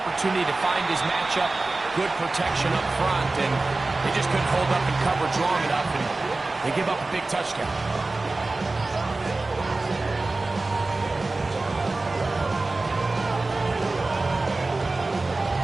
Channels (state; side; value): quieter; left; 3.3 dB